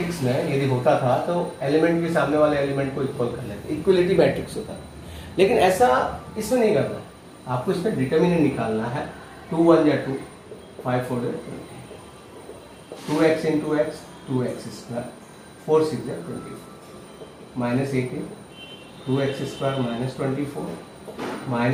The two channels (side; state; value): both; identical; correlation 1.00